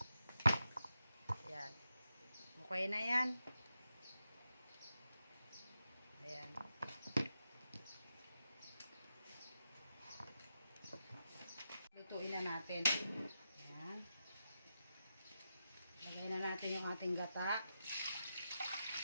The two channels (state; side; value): inverted; both; correlation -0.87